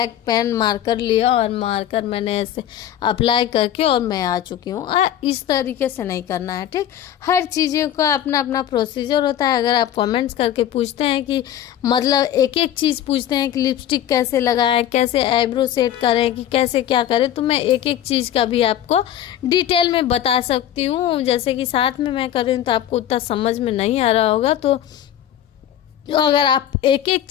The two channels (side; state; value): right; quieter; 11.1 dB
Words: पेन मार्कर लिया और मार्कर मैंने ऐसे अप्लाई करके और मैं आ चुकी हूँ। इस तरीके से नहीं करना है। ठीक, हर चीज़ों का अपना अपना प्रोसीजर होता है। अगर आप कमेंट्स करके पूछते हैं कि मतलब एक एक चीज़ पूछते हैं कि लिपस्टिक कैसे लगाएं, कैसे आईब्रो सेट करें, कि कैसे क्या करें, तो मैं एक एक चीज़ का भी आपको डिटेल में बता सकती हूँ। जैसे कि साथ में मैं कर रही हूँ तो आपको उतना समझ में नहीं आ रहा होगा। तो अगर आप एक एक